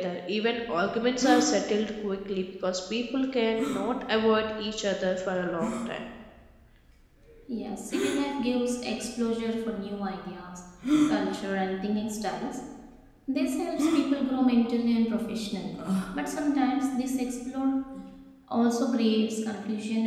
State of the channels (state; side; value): identical; both; correlation 1.00